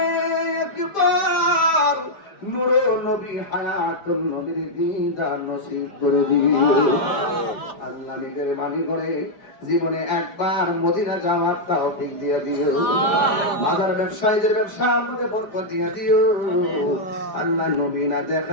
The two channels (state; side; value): late; right; 5.0 ms